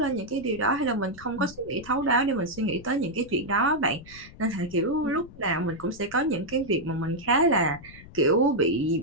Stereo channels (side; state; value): left; noise; rumble, 19 dB below the sound